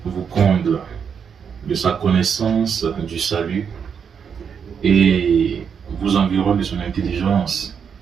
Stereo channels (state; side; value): quieter; left; 7.0 dB